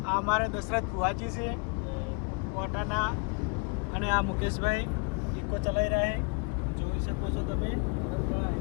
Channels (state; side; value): quieter; right; 32.3 dB